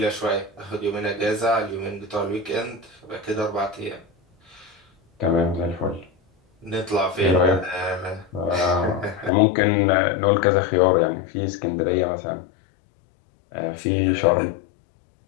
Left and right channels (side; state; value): right; drops out; at 9.3 s